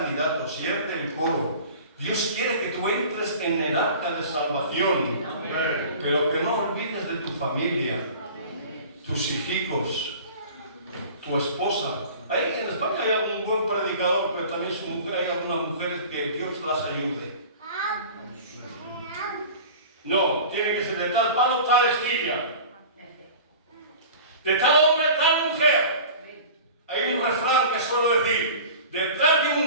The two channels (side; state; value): both; inverted; correlation -0.40